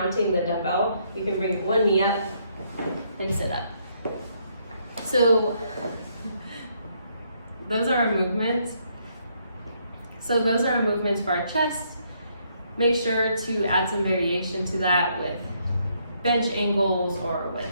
the dumbbell, you can bring 1 knee up and sit up. So those are our movements. So those are our movements for our chest. Make sure to add some variation to that with bench angles or with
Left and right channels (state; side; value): inverted; both; correlation -0.72